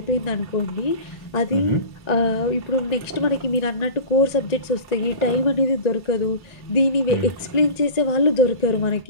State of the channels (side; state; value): right; late; 1.9 ms